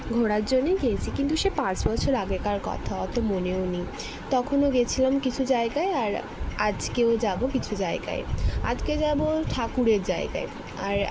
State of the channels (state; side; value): identical; both; correlation 1.00